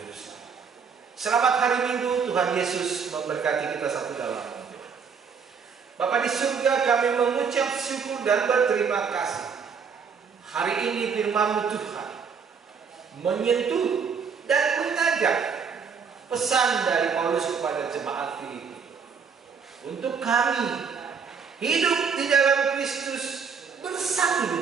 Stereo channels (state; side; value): quieter; left; 6.1 dB